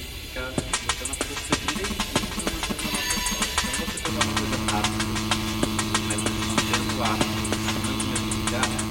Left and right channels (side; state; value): both; identical; correlation 1.00